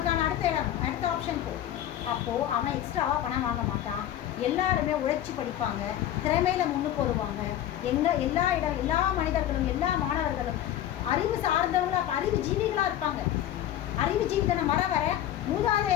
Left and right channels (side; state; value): right; quieter; 11.9 dB